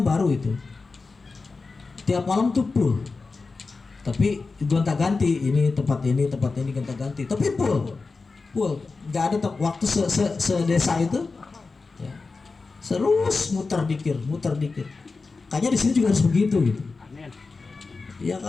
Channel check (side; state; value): right; quieter; 4.1 dB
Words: baru itu. Tiap malam tuh full. Tapi gonta-ganti, ini tempat ini gonta-ganti. Tapi full. Nggak ada waktu sedesa itu. Ya. Terus muter dikir. Kayaknya di sini juga harus begitu gitu. Ya